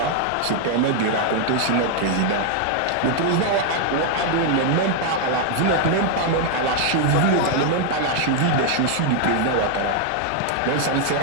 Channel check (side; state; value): both; different; correlation 0.00